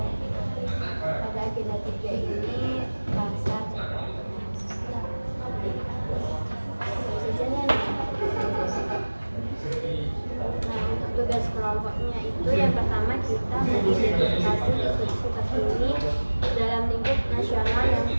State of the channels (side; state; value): both; inverted; correlation -1.00